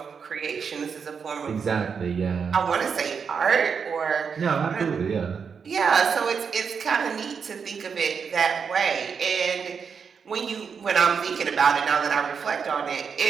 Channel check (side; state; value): left; quieter; 6.2 dB